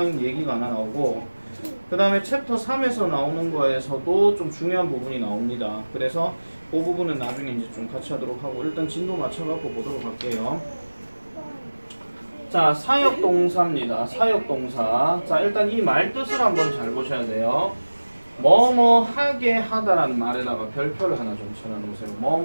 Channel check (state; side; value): inverted; both; correlation -1.00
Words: 얘기가 하나 나오고, 그 다음에 챕터 3에서 나오는 거에서도 좀 중요한 부분이 나옵니다. 그래서 그 부분은 나중에 이제 좀 같이 하도록 하고, 일단 진도 맞춰갖고 보도록 할게요. 자, 사역동사입니다. 사역동사. 자, 일단 이 말 뜻을 한번 잘 보셔야 돼요. 뭐뭐 하게 하다라는 말에다가 별표를 하나 좀 쳐놔놓으세요.